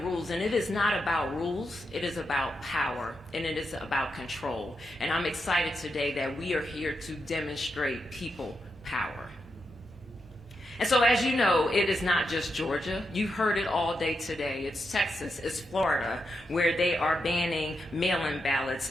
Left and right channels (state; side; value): noise; left; hum, 28 dB below the sound